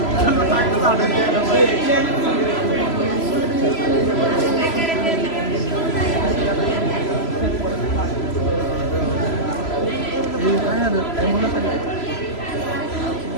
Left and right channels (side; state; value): right; late; 3.0 ms